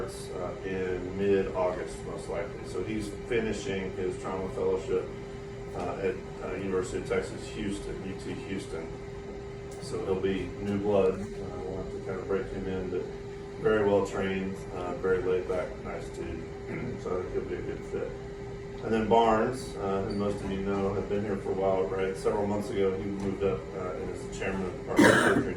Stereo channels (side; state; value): both; identical; correlation 1.00